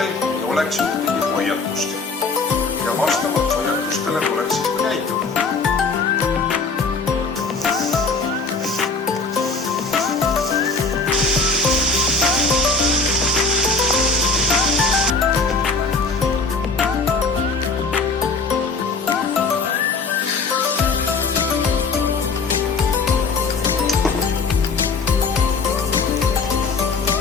ei oleks ühtegi hoiatust. Ja vastavalt hoiatustele tuleks siis ka käituda.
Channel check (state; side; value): quieter; right; 4.2 dB